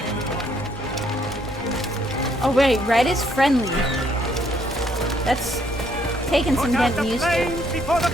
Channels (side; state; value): both; normal; correlation 0.69